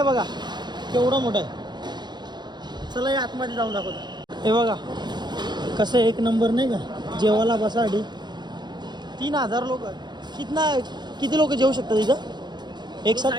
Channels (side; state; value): left; late; 0.21 ms